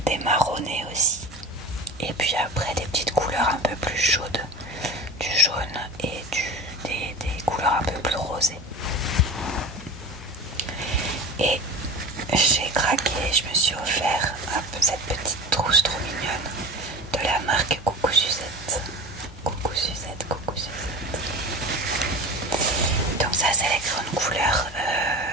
des marronnés aussi, et puis après des petites couleurs un peu plus chaudes, du jaune et des couleurs un peu plus rosées. Et j'ai craqué, je me suis offert un peu cette petite trousse trop mignonne de la marque Coucou Suzette. Coucou Suzette, coucou Suzette. Donc ça, c'est les crayons de couleur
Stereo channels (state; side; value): normal; both; correlation 0.32